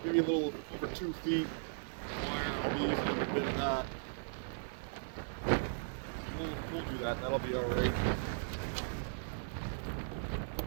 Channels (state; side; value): silent; left; digital silence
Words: a little over 2 feet wire. I'll be using a bit of that. We'll do that. That'll be all right.